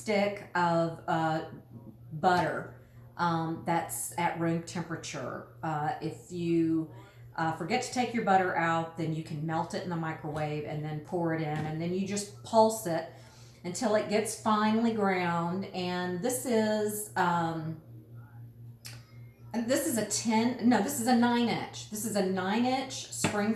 of butter that's at room temperature. If you forget to take your butter out, then you can melt it in the microwave and then pour it in, and then you just pulse it until it gets finely ground. And this is a 9-inch. This is a 9-inch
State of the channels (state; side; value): identical; both; correlation 1.00